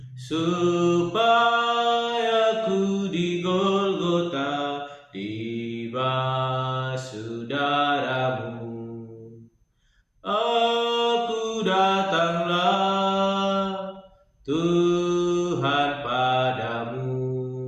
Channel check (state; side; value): identical; both; correlation 1.00